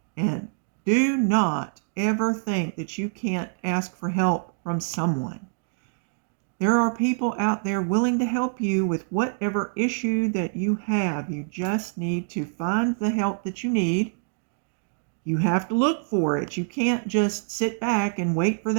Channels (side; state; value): left; silent; 61 dB below the other